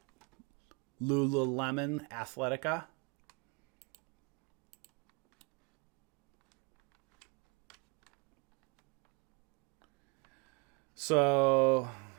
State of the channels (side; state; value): left; quieter; 29.5 dB